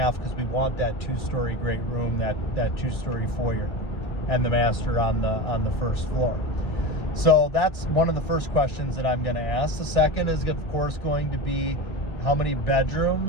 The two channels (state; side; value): late; right; 2.0 ms